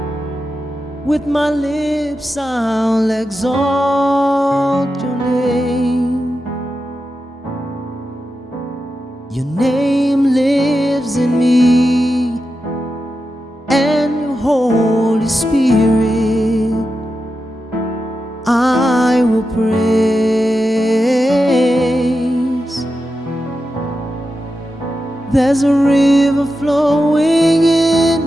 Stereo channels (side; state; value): both; normal; correlation 0.90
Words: With my lips I'll exalt your name. Your name lives in me, and your Holy Spirit I will praise. There's a river flowing